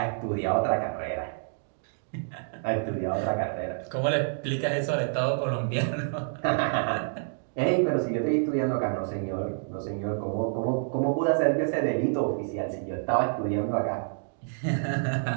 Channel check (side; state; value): left; silent; digital silence